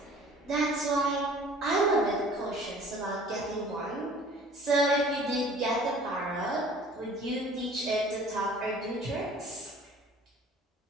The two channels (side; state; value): both; normal; correlation 0.49